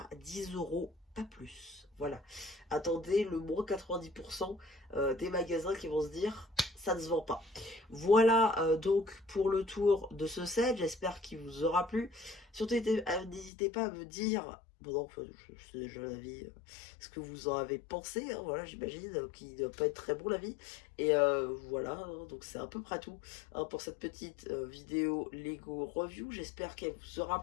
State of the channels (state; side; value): drops out; right; at 13.5 s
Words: 10 €, pas plus. Voilà. Attendez le moins 90% des magasins qui vont se dire ça ne se vend pas. Voilà donc pour le tour de ce set. J'espère qu'il vous aura plu. Surtout n'hésitez pas à me dire Bon, non, enfin, je sais déjà l'avis, ce que vous en avez pensé, hein, voilà, j'imagine, qu'il ne doit pas être très bon l'avis. Et voilà, hein, donc c'est à peu près tout hein, pour cette petite vidéo Lego review. J'espère qu'elle vous aura